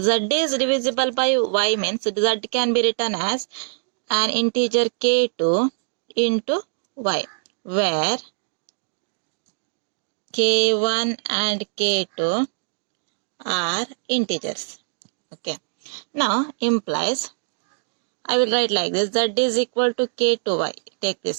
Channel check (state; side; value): silent; left; digital silence